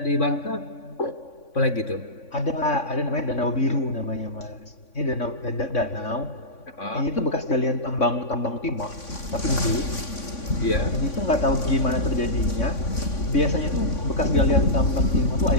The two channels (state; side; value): late; right; 3.5 ms